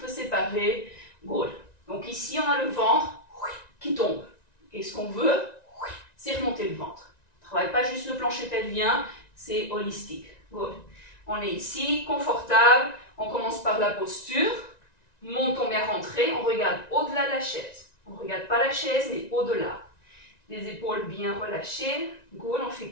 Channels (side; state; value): right; late; 1.9 ms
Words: séparées. Good. Donc, ici, on a le ventre qui tombe. Et ce qu'on veut, c'est remonter le ventre. On ne travaille pas juste le plancher pelvien, c'est holistique. Good. On est ici, confortable. On commence par la posture. Montons bien rentré. On regarde au-delà de la chaise. On ne regarde pas la chaise, mais au-delà. Les épaules bien relâchées. Good. On fait